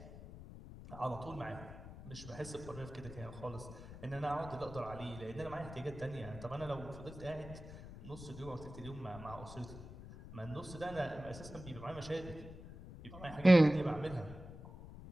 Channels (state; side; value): noise; left; rumble, 13 dB below the sound